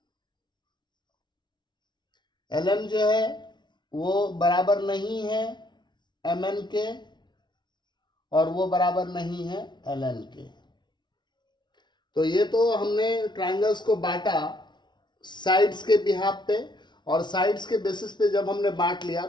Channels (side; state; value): right; late; 0.21 ms